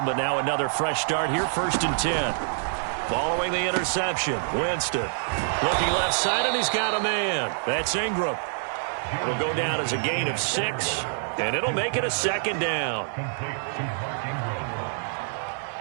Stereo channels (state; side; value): silent; left; digital silence